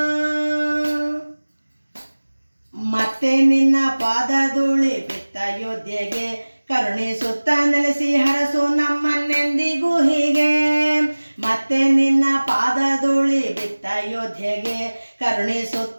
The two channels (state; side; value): inverted; both; correlation -1.00